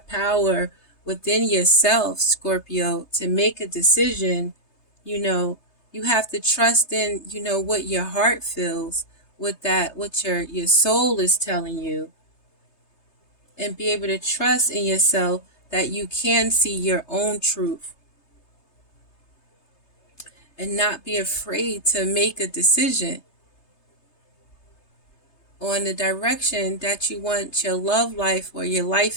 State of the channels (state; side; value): late; right; 3.3 ms